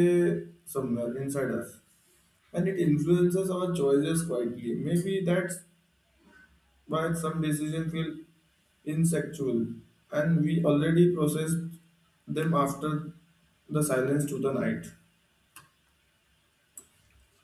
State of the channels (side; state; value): both; identical; correlation 1.00